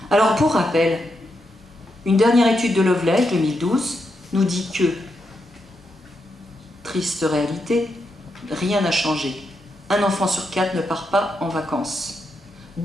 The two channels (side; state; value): both; normal; correlation 0.83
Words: Alors pour rappel, une dernière étude de Lovelace, 2012, nous dit que, triste réalité, rien n'a changé. Un enfant sur 4 ne part pas en vacances.